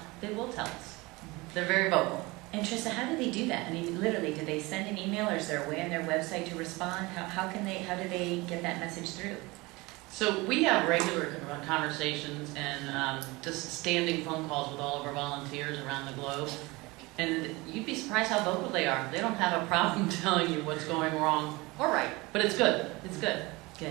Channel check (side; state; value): left; quieter; 23.2 dB